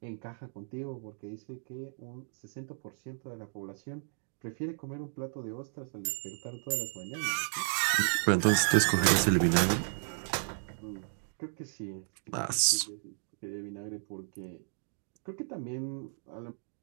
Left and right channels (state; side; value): silent; left; digital silence